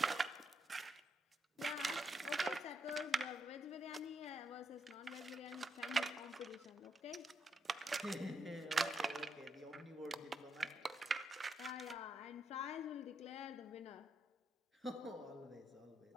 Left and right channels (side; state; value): both; normal; correlation 0.80